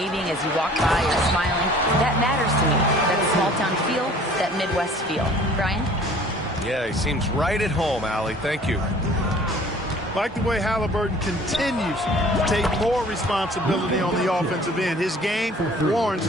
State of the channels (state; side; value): normal; both; correlation 0.51